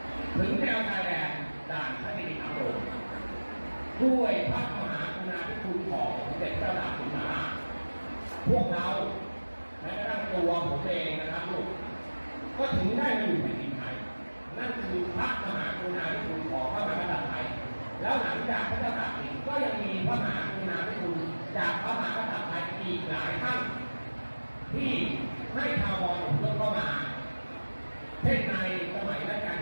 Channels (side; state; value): both; inverted; correlation -1.00